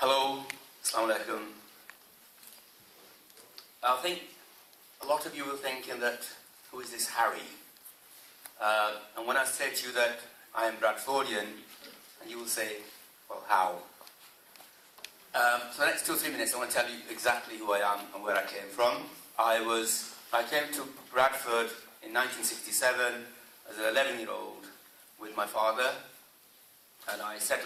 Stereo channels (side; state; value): both; identical; correlation 1.00